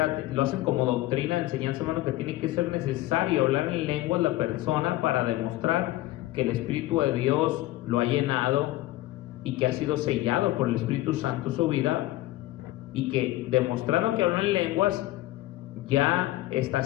lo hacen como doctrina, enseñanza, hermano, que tiene que ser necesario hablar en lenguas la persona para demostrar que el Espíritu de Dios lo ha llenado y que ha sido sellado por el Espíritu Santo su vida, y que demostrando que habla en lenguas ya está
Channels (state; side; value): quieter; right; 16.7 dB